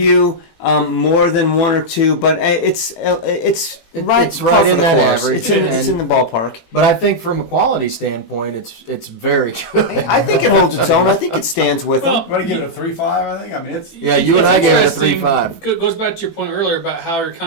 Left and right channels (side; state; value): right; late; 18 ms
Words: more than one or two, but it's right, it's par right for in the that course. average, It's in and- the ballpark. But I think from a quality standpoint, it's very good. I think it holds its own. I think it stands with them. I'm going to give it a 3.5, I think. I mean, it's. Yeah, you and I gave it a Interesting. 3.5. Goes back to your point earlier about how you're